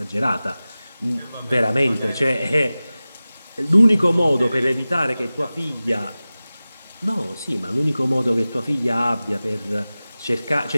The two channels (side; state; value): both; inverted; correlation -0.97